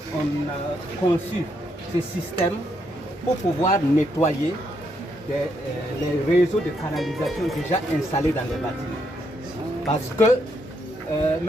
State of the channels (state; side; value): normal; both; correlation 0.77